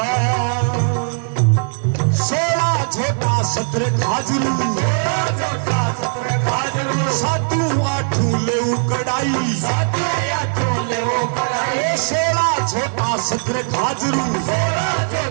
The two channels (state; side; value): silent; left; 67 dB below the other